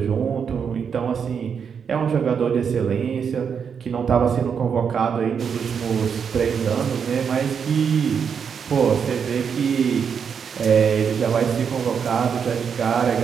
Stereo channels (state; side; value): quieter; left; 6.9 dB